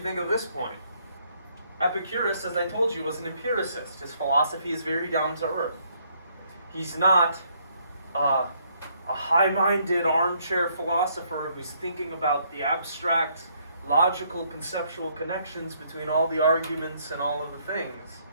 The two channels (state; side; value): inverted; both; correlation -0.69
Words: think of this point. Epicurus, as I told you, was an empiricist. His philosophy is very down to earth. He's not a high-minded armchair philosopher who's thinking about the abstract, logical, conceptual connections between all the arguments and all of the things.